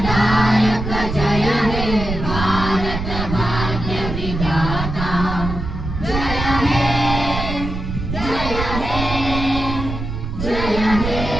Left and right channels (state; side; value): noise; right; rumble, 5 dB below the sound